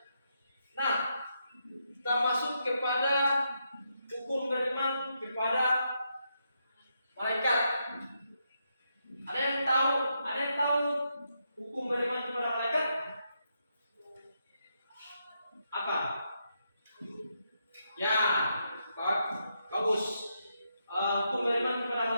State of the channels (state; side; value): inverted; both; correlation -0.81